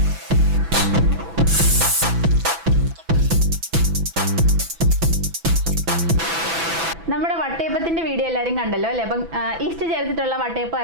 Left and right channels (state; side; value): late; left; 6.0 ms